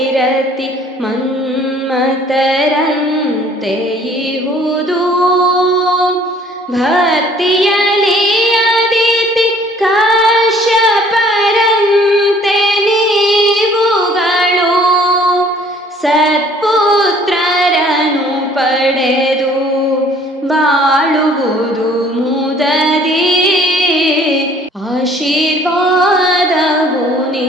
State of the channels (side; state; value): both; normal; correlation 0.56